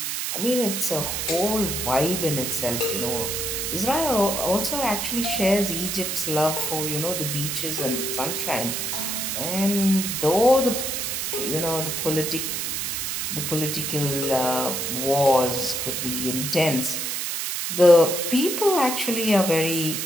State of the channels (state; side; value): noise; right; hiss, 2 dB below the sound